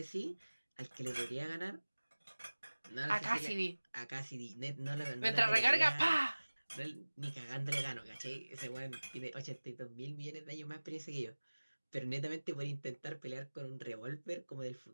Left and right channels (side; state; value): both; inverted; correlation -1.00